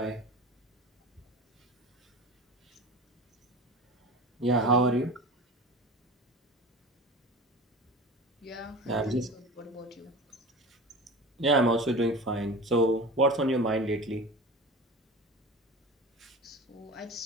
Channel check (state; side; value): normal; both; correlation 0.33